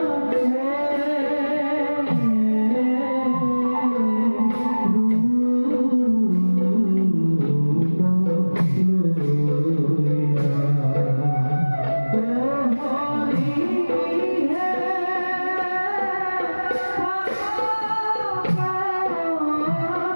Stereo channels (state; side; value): inverted; both; correlation -1.00